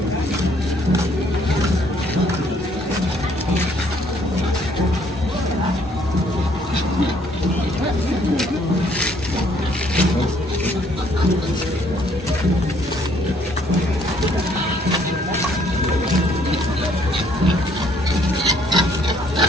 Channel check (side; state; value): both; normal; correlation 0.64